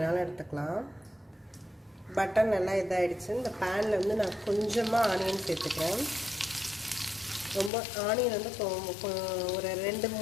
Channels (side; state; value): right; drops out; at 7.7 s